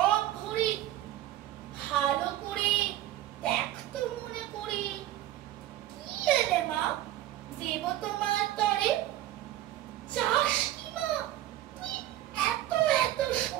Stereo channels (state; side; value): quieter; left; 13.8 dB